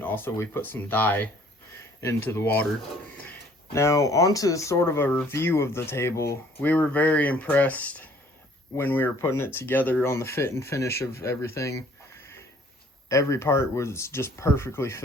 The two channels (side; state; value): both; normal; correlation 0.57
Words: also we put some dye into the water. Now onto sort of a review of the table. We were very impressed when we were putting it together on the fit and finish of everything. Every part was just perfectly